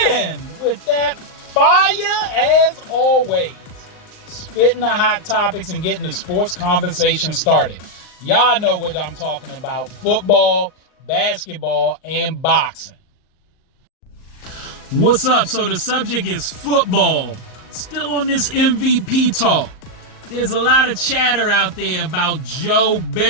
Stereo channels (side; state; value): right; late; 38 ms